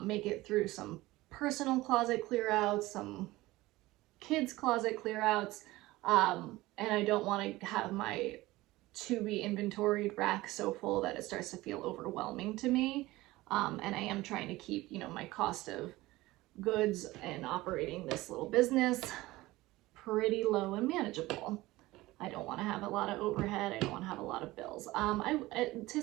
make it through some personal closet clear outs, some kids closet clear outs. And I don't want to have my to be inventoried rack so full that it starts to feel overwhelming to me. And I am trying to keep, you know, my cost of goods and operating this little business pretty low and manageable. I don't want to have a lot of overhead. I don't want to have a lot of bills. I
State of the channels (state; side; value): quieter; left; 18.8 dB